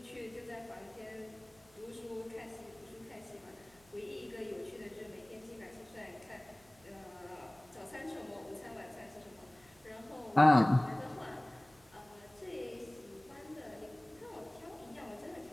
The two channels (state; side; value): noise; right; hum, 28 dB below the sound